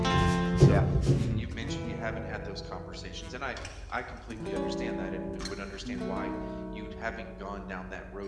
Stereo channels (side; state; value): both; identical; correlation 1.00